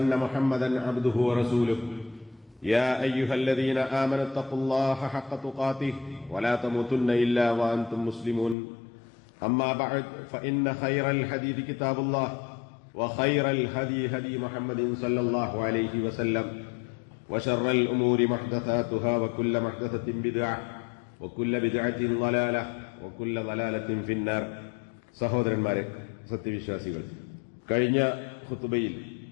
محمدا عبده ورسوله يا أيها الذين آمنوا اتقوا الله حق تقاته ولا تموتن إلا وأنتم مسلمون أما بعد فإن خير الحديث كتاب الله وخير الهدي هدي محمد صلى الله عليه وسلم وشر الأمور محدثاتها وكل محدثة بدعة وكل بدعة ضلالة وكل ضلالة في النار. സഹോദരന്മാരെ, സത്യവിശ്വാസികൾ, കഴിഞ്ഞ ഖുതുബയിൽ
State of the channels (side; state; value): right; drops out; at 8.6 s